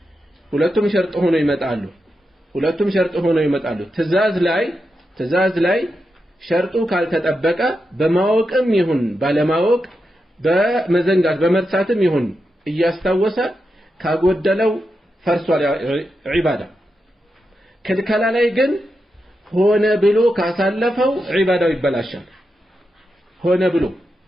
ሁለቱም ሸርጥ ሆነው ይመጣሉ ትእዛዝ ላይ ሸርጡ ካልተጠበቀ በማወቅም ይሁን ባለማወቅ በመዘንጋት በመርሳትም ይሁን እያስታወሰ ካጎደለው ፈርሷል ዒባዳ ክልከላ ላይ ግን ሆነ ብሎ ካሳለፈው ዒባዳው ይበላሻል ሆነ ብሎ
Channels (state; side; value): normal; both; correlation 0.87